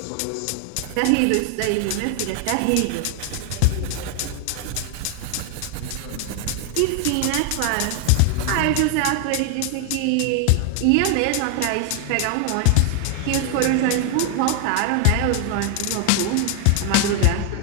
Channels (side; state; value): both; different; correlation 0.00